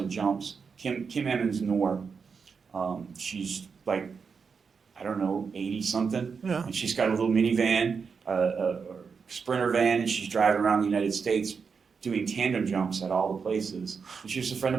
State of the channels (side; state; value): left; quieter; 5.6 dB